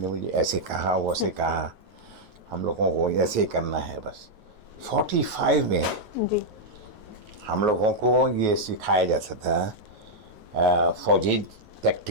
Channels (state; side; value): late; left; 9.3 ms